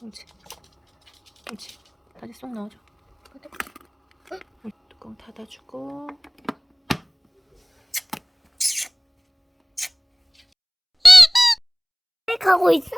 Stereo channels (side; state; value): both; identical; correlation 1.00